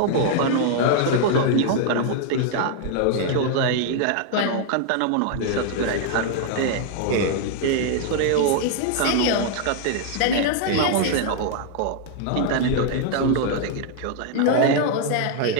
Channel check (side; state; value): both; different; correlation 0.00